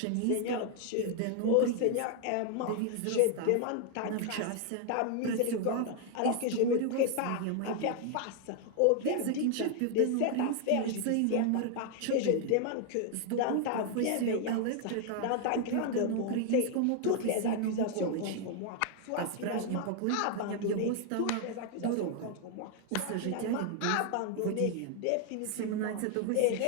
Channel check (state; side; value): different; both; correlation 0.00